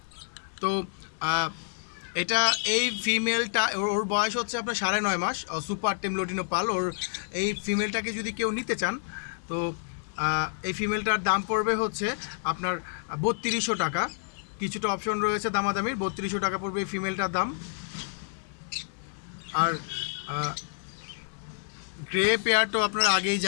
তো এটা এই ফিমেলটা ওর বয়স হচ্ছে আপনার 9.5 মাস। সুপার টেম লোটিনো পাল। ওর এই ফিমেলটাকে যদি কেউ নিতে চান, তো এই ফিমেলটার দাম পড়বে হচ্ছে আপনার 3200 টাকা। কিছুটা অপশন রয়েছে দামাদামির। 3200 টাকা পড়বে এই ফিমেলটার দাম। আর গ্রে পেয়ার তো আপনারা আগেই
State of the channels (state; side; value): silent; right; digital silence